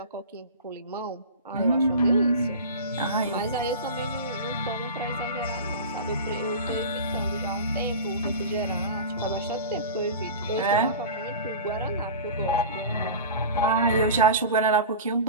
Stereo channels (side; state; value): both; inverted; correlation -0.32